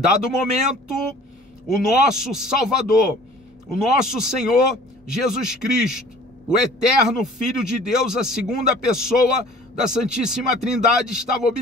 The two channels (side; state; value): both; normal; correlation 0.49